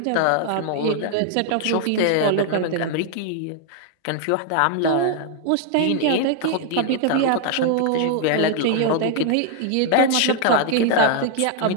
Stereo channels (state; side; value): different; both; correlation 0.00